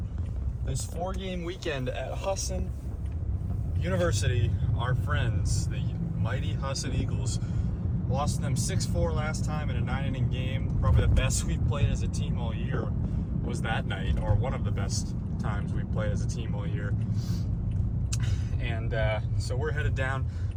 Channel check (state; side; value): identical; both; correlation 1.00